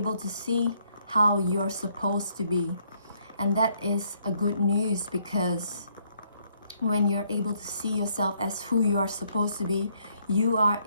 to see how you're supposed to be. And that is a good news, because when you're able to see yourself as who you are supposed to be, you are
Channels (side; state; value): both; inverted; correlation -0.69